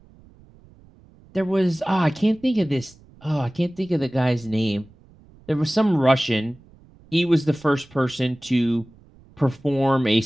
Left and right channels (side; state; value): right; noise; rumble, 26 dB below the sound